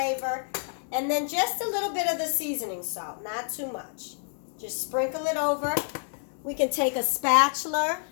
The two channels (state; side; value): silent; right; 59 dB below the other